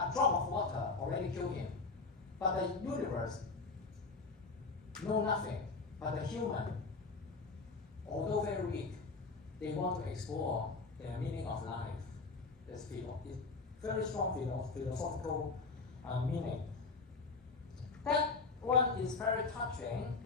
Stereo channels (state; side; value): quieter; right; 4.2 dB